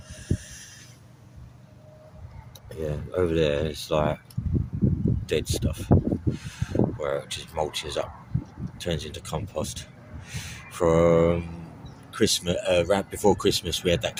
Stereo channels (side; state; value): both; identical; correlation 1.00